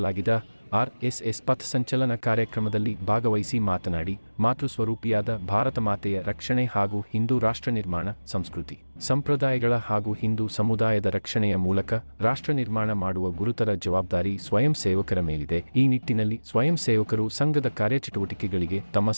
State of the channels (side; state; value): both; inverted; correlation -1.00